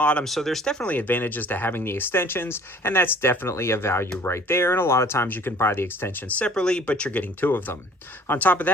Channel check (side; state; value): both; normal; correlation 0.52